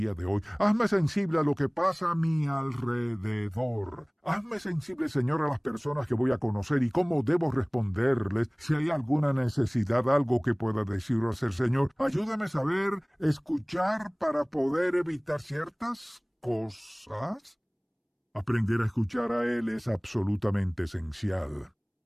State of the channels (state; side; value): identical; both; correlation 1.00